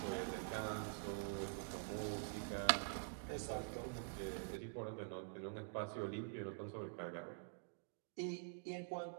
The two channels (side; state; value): left; silent; digital silence